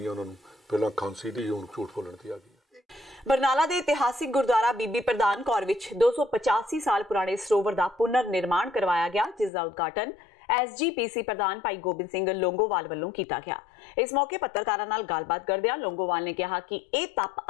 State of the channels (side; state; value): right; drops out; at 9.5 s